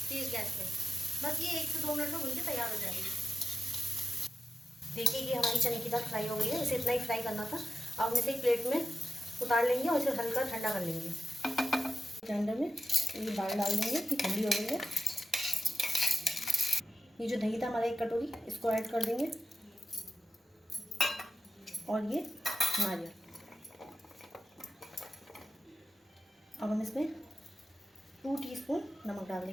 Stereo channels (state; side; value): normal; both; correlation 0.90